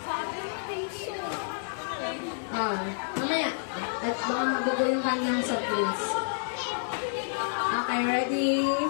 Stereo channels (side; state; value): right; silent; digital silence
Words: Mamaya. At baka magugo yung kanyang soft drinks. Okay, ready?